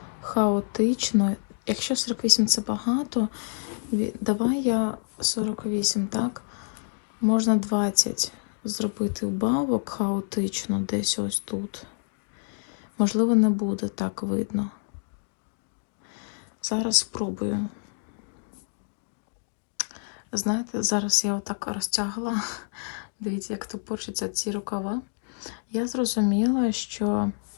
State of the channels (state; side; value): silent; right; digital silence